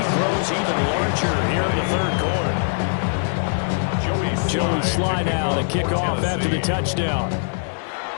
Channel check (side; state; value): right; silent; digital silence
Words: grows even larger here in the 3rd quarter. Joey Sly now to kick off after the touchdown.